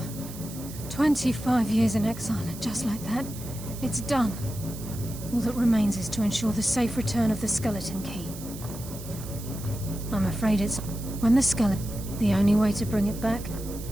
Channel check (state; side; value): noise; right; hiss, 14 dB below the sound